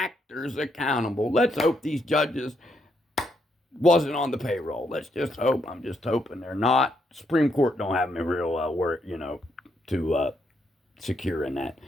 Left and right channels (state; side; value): normal; both; correlation 0.76